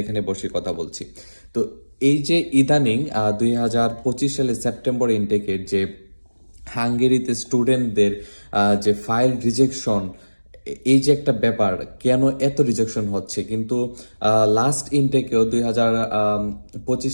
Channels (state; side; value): inverted; both; correlation -1.00